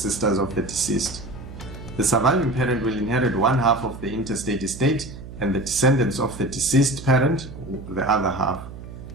of the deceased. The surviving parent will inherit 1/2 of the interstate estate, and the descendants of the deceased parent the other half.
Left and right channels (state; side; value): noise; right; hum, 13 dB below the sound